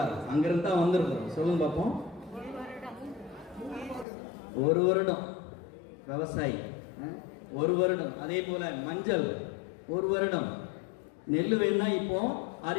அங்கிருந்து தான் வந்திருக்கோம். சொல்லுங்க பார்ப்போம். 1 வருடம் விவசாயி, 1 வருடம். அதே போல மஞ்சள் 1 வருடம். நெல் வேணா இப்போ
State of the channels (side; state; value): right; drops out; at 4.0 s